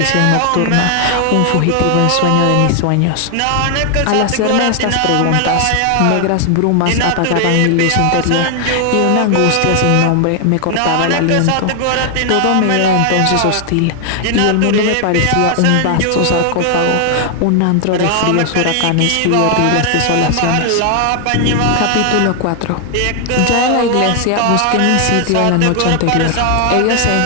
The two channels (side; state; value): both; different; correlation 0.00